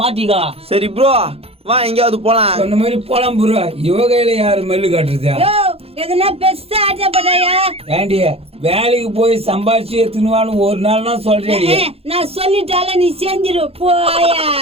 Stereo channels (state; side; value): late; left; 0.29 ms